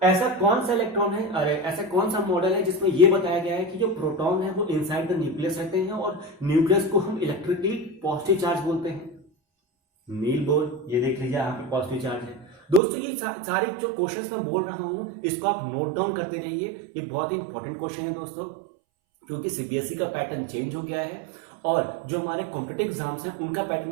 ऐसा कौन सा इलेक्ट्रॉन है, अरे ऐसा कौन सा मॉडल है जिसमें यह बताया गया है कि जो प्रोटॉन है वो इनसाइड द न्यूक्लियस रहते हैं और न्यूक्लियस को हम इलेक्ट्रिकली पॉजिटिव चार्ज बोलते हैं, नील बोर। ये देख लीजिए यहाँ पे पॉजिटिव चार्ज है। दोस्तों ये सारे जो क्वेश्चंस मैं बोल रहा हूं इसको आप नोट डाउन करते रहिए, ये बहुत ही इंपॉर्टेंट क्वेश्चन है दोस्तों, क्योंकि सीबीएसई का पैटर्न चेंज हो गया है और जो हमारे कॉम्पिटिटिव एग्जाम्स हैं उनका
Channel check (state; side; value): drops out; left; at 12.8 s